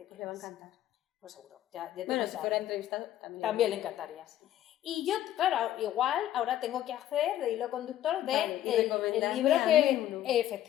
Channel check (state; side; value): quieter; right; 12.5 dB